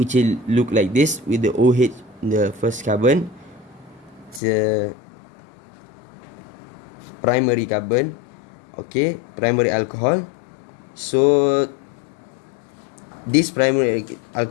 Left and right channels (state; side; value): drops out; right; at 4.4 s